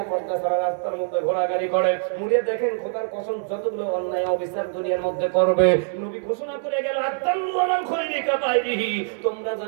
পর্দা ছাড়া রাস্তার মধ্যে ঘোরাঘুরি করে, মুড়ে দেখেন খোদার কসম যতগুলো অন্যায় অবিচার দুনিয়ার মধ্যে করবে, নবী ঘোষণা করে গেল আত্তাল্লু আলাল খৈরি কাবাইরিহি। তোমরা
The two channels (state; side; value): silent; left; 63 dB below the other